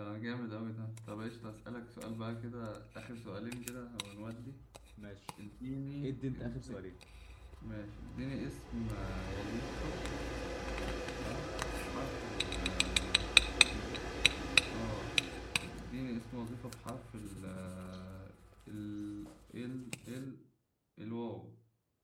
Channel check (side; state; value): both; identical; correlation 1.00